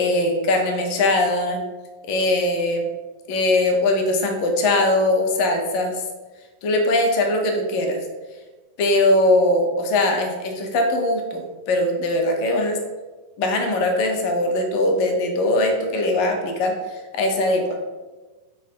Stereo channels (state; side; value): late; right; 11 ms